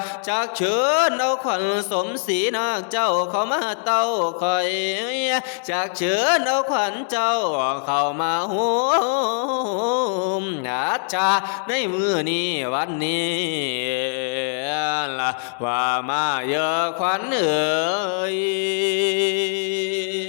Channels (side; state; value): right; silent; 64 dB below the other